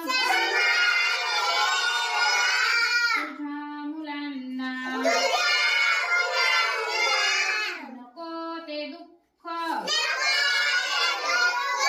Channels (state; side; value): identical; both; correlation 1.00